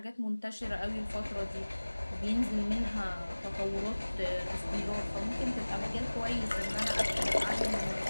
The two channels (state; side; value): inverted; both; correlation -1.00